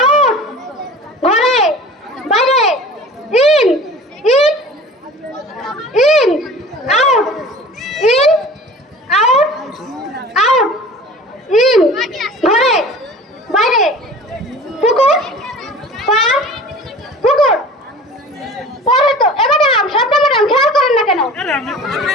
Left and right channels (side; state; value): both; normal; correlation 0.42